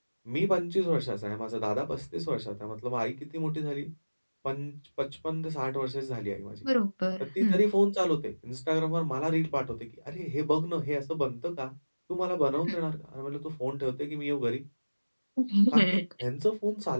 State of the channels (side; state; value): both; inverted; correlation -1.00